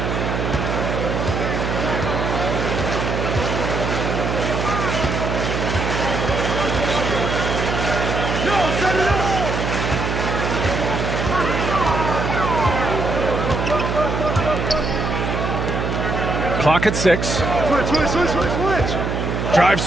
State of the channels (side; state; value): right; noise; hum, 1 dB below the sound